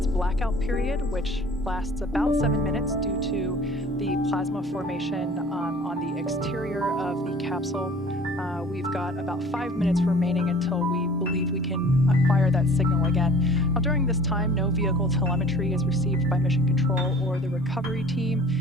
blackout period, which lasts about 7 minutes due to the plasma formation on the exterior of the capsule. We've got about 5 minutes remaining until we believe we can acquire that signal again. Now, during this time, no vehicle telemetry is received by Mission Control or the recovery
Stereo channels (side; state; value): both; normal; correlation 0.47